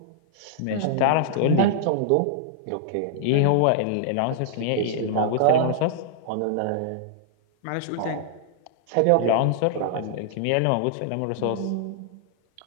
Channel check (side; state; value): both; different; correlation -0.01